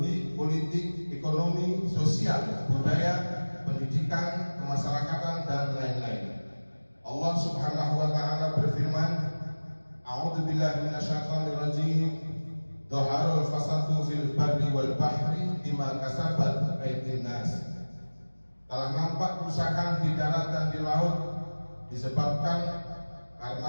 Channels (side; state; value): both; inverted; correlation -1.00